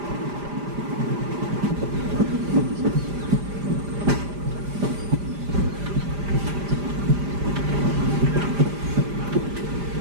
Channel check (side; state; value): left; late; 5.0 ms